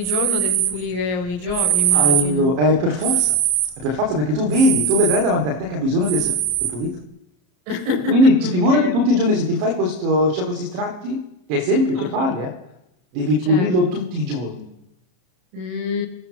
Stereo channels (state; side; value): late; left; 34 ms